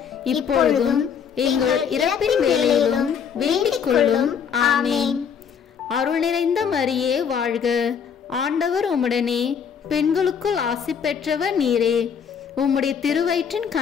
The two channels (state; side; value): quieter; right; 7.3 dB